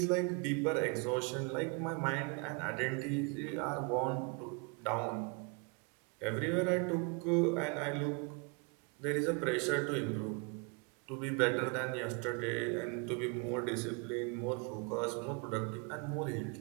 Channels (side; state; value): left; quieter; 33.1 dB